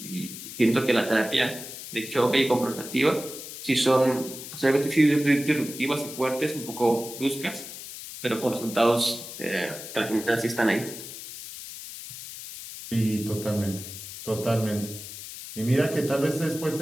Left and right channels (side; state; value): left; noise; hiss, 11 dB below the sound